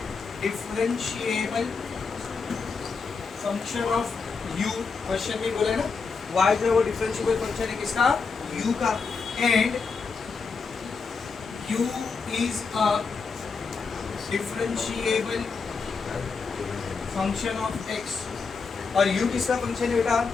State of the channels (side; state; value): right; quieter; 4.9 dB